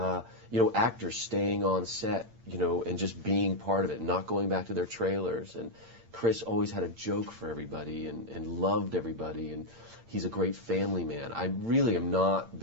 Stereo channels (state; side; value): late; left; 8.8 ms